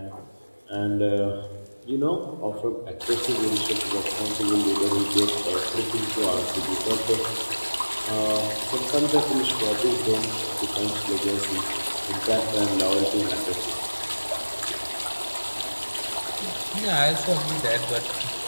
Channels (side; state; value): both; inverted; correlation -1.00